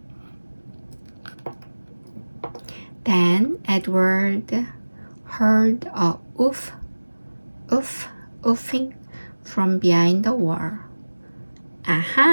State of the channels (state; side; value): inverted; both; correlation -1.00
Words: Then Edward heard a oof, oof, oofing from behind the wall.